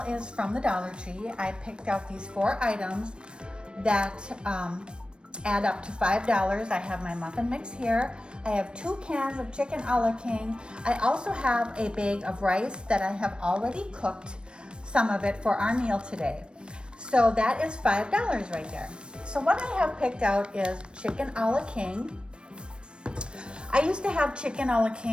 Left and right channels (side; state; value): left; late; 0.055 ms